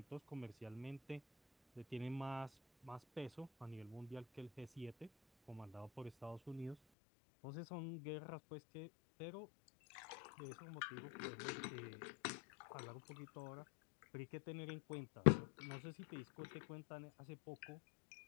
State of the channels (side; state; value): right; drops out; at 6.8 s